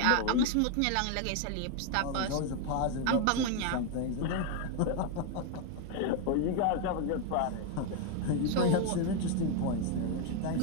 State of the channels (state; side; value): different; both; correlation 0.01